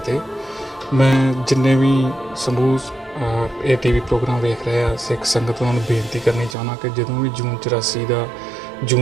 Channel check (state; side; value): drops out; left; at 6.6 s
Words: मैं जिन्ने भी समूह ਇਹ ਟੀਵੀ ਪ੍ਰੋਗਰਾਮ ਵੇਖ ਰਹੇ ਆ ਸਿੱਖ ਸੰਗਤ ਉਹਨਾਂ ਨੂੰ ਬੇਨਤੀ ਕਰਨੀ ਚਾਹੁੰਦਾ ਕਿ ਜਦੋਂ ਵੀ ਜੂਨ 84 ਦਾ